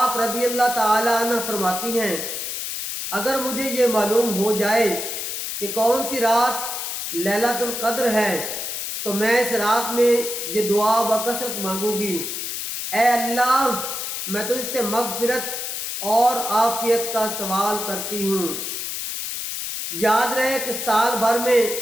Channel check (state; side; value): noise; left; hiss, 4 dB below the sound